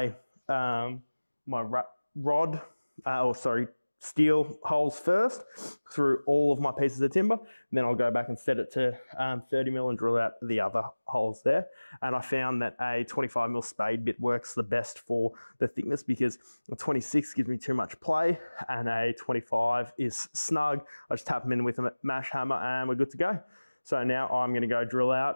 steel holes first through all of my pieces of timber. Then I'll go back and set it to 30mm and drill out the other holes there. And I found that a 25mm spade bit works the best for the thickness because a 26 gives me too much play and a 25 is snug. I just tap them in with a mash hammer and we're good to go. So now I'm going to go drill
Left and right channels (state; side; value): inverted; both; correlation -1.00